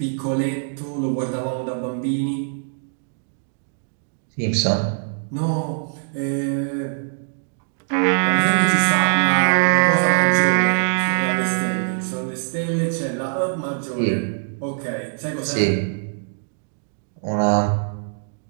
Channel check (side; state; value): left; silent; digital silence